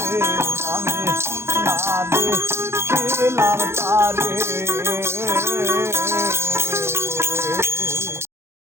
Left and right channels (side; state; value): left; late; 0.12 ms